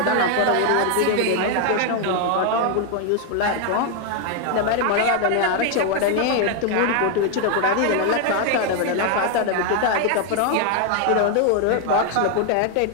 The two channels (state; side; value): different; both; correlation 0.01